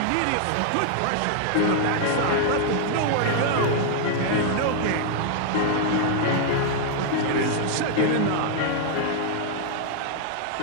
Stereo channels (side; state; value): both; different; correlation 0.00